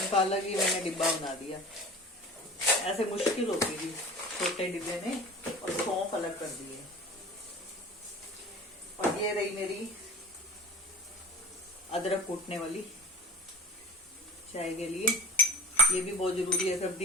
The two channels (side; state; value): both; normal; correlation 0.37